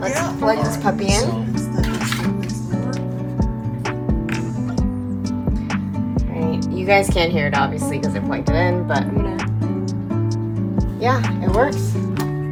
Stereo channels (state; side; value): identical; both; correlation 1.00